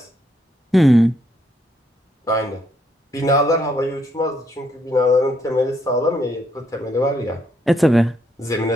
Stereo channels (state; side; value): normal; both; correlation 0.74